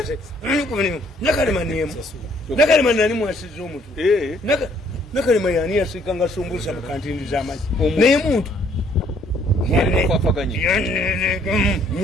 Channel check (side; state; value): both; normal; correlation 0.64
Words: nakalema niemu nakalema nani mwasiza omutwe nakalema yani yasika nga sumbusa mu kantindi z'amazzi naye muntu